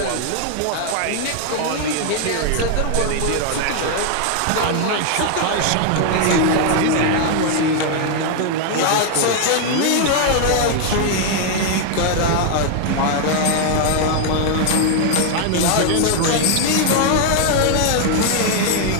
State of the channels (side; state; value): both; different; correlation 0.00